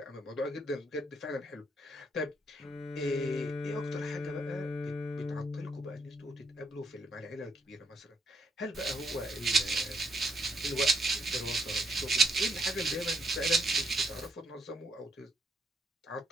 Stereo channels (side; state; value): both; normal; correlation 0.75